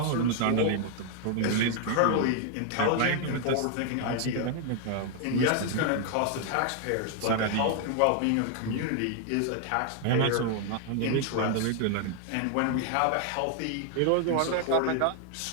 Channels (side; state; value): both; different; correlation 0.00